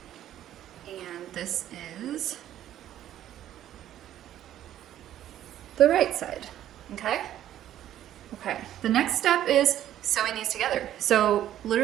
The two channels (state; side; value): quieter; left; 11.9 dB